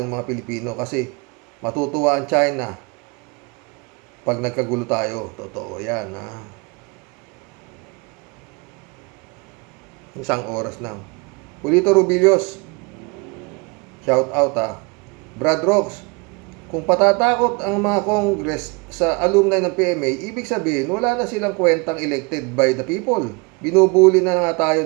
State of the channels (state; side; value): quieter; left; 29.6 dB